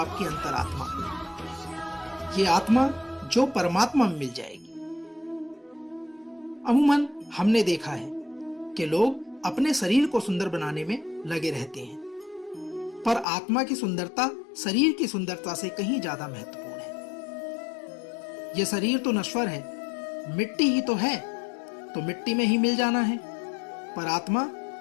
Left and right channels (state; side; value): drops out; right; at 13.2 s